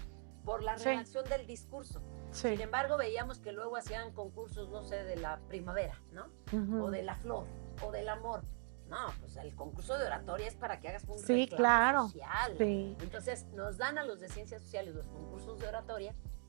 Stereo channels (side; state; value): left; silent; 50 dB below the other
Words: por la redacción del discurso. Sí. Sin embargo, veíamos que luego hacían concursos, no sé, de la primavera, ¿no? O de la flor, o del amor. No, pues el concurso de oratoria es para que hagas un reclamo social. Sí. Entonces, nos dan a los de ciencias sociales los concursos de oratoria